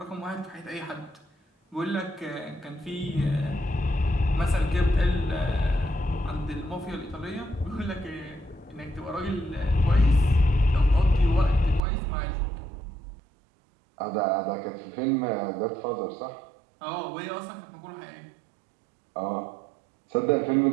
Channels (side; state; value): left; drops out; at 11.8 s